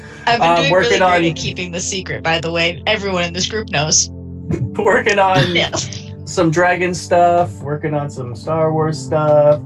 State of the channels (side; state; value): both; identical; correlation 1.00